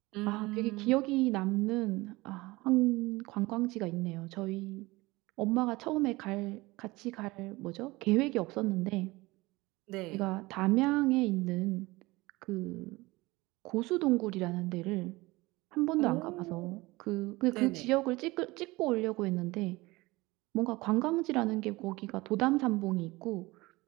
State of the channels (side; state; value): left; quieter; 21.4 dB